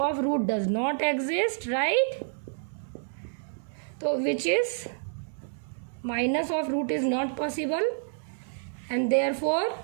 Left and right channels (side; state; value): left; silent; digital silence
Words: root does not exist right. तो which is minus of root is not possible and therefore